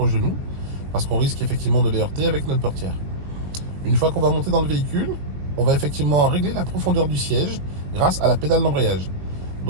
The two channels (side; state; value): left; late; 21 ms